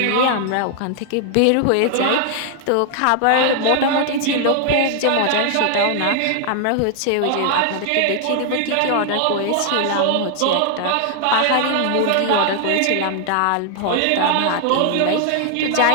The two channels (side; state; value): both; different; correlation 0.00